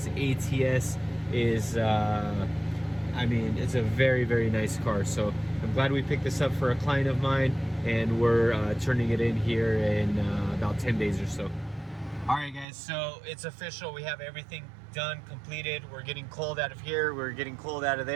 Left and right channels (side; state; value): left; drops out; at 12.7 s